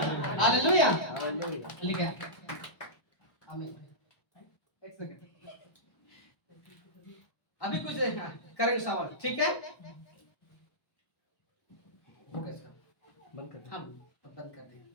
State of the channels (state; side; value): late; right; 1.2 ms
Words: hallelujah. लिखा है, आमीन। एक सेकंड, अभी कुछ करेंगे सवाल, ठीक है।